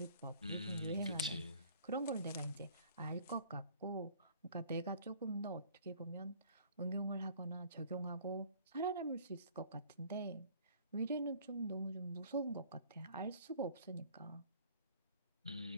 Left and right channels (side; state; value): both; inverted; correlation -0.54